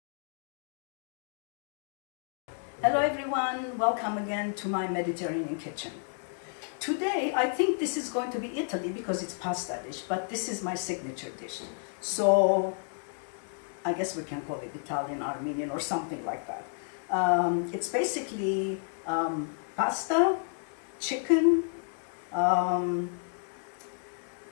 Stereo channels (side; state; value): right; silent; 57 dB below the other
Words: Hello everyone, welcome again to my Mediterranean kitchen. Today I think this is going to be Italy because it's pasta dish, but this is my signature dish. So I guess we can call it Italian, Armenian or something like that. It's basically pasta, chicken,